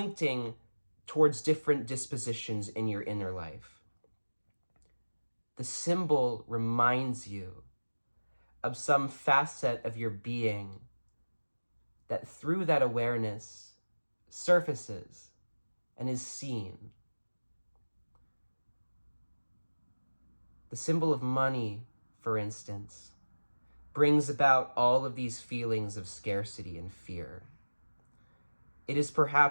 towards different dispositions in your inner life. The symbol reminds you of some facet of your being that through that awareness surfaces and is seen. The symbol of money, for instance, brings about all of these feelings of scarcity and fear. It is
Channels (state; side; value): inverted; both; correlation -1.00